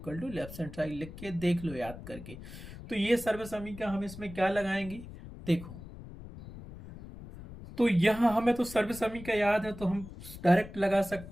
to left hand side लिख के देख लो याद करके। तो ये सर्व समीकरण हम इसमें क्या लगाएंगे देखो। तो यहाँ हमें तो सर्व समीकरण याद है तो हम डायरेक्ट लगा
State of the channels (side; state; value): left; noise; rumble, 14 dB below the sound